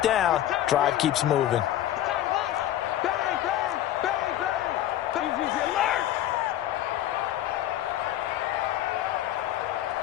down. Drive keeps moving.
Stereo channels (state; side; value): quieter; right; 12.6 dB